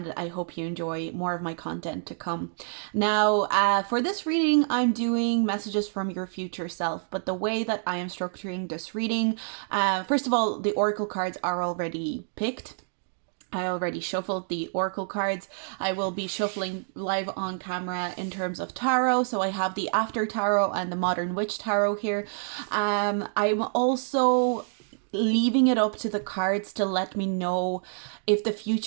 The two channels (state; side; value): silent; left; digital silence